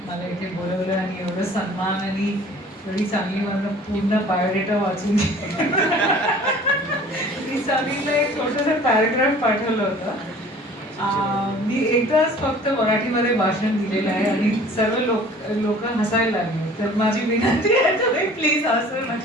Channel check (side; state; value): both; normal; correlation 0.48